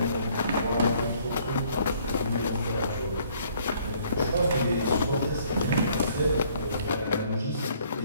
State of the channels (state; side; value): inverted; both; correlation -0.62